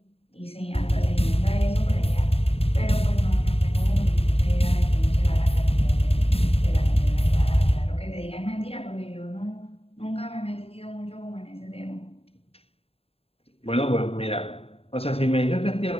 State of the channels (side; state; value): right; late; 0.28 ms